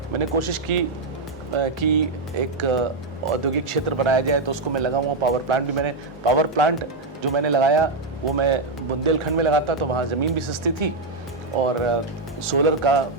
मैंने कोशिश की कि एक औद्योगिक क्षेत्र बनाया जाए। तो उसको मैं लगा हुआ पावर प्लांट जो मैंने लगाया वो मैं बुंदेलखंड में लगाता तो वहाँ ज़मीन भी सस्ती थी और सोलर का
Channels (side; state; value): left; quieter; 3.4 dB